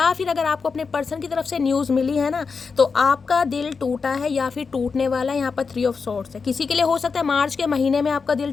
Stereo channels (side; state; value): right; quieter; 5.1 dB